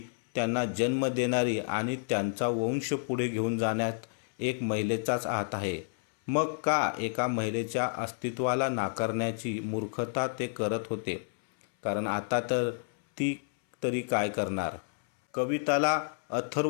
त्यांना जन्म देणारी आणि त्यांचा वंश पुढे घेऊन जाण्यात एक महिलेचाच हात आहे. मग का एका महिलेच्या अस्तित्वाला नाकारण्याची मूर्खता ते करत होते? कारण आता तर ती तरी काय करणार? कविताला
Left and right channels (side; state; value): right; silent; 58 dB below the other